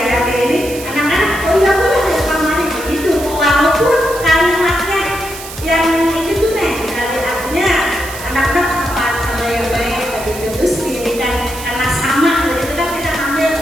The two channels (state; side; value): noise; right; hiss, 12 dB below the sound